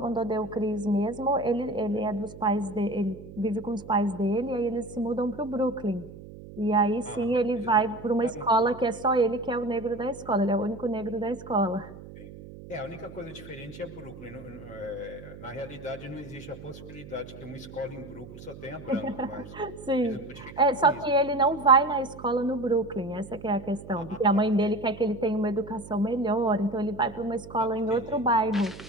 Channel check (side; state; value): right; noise; hum, 15 dB below the sound